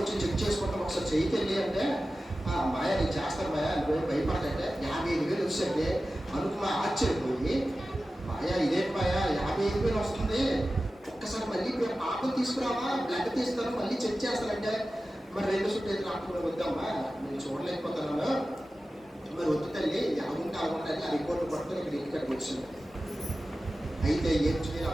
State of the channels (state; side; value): normal; both; correlation 0.94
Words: వచ్చి చెక్ చేసుకుంటాం ఒకసారి చేయకెళ్ళి అంటే, మాయా నేను చేస్తాను మాయా, నువ్వు భయపడకంటే 55,000 వచ్చండి అనుకున్నా. ఆశ్చర్యపోయి, మాయా ఇదేంటి మాయా 55,000 వస్తుంది, ఒక్కసారి మళ్ళీ పాపం తీసుకురావా, బ్లడ్ తీస్తాను, మళ్ళీ చెక్ చేస్తానంటే, మరి 2 సుట్టేది డాక్టర్ వద్దామా, నేను చూడలేకపోతున్నాను, మరి వద్దు తల్లి, అలాగుంటే ఆ రిపోర్ట్ పట్టుకొని ఇక్కడ ఇంటికి వచ్చింది. అయితే ఏం చేయాలి